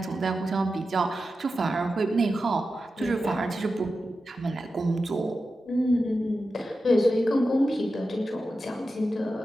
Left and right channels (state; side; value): normal; both; correlation 0.91